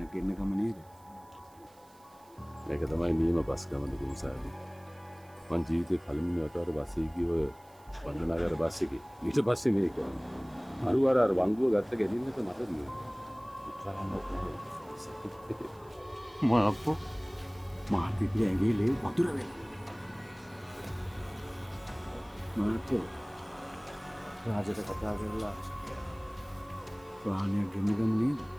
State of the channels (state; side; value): noise; right; hiss, 28 dB below the sound